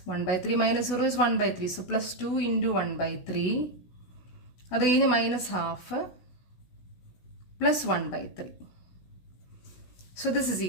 1/3 minus 0 is 1/3. സോ പ്ലസ് 2 into 1/3. അത് കഴിഞ്ഞ് minus half plus 1/3. So this is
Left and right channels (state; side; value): late; right; 16 ms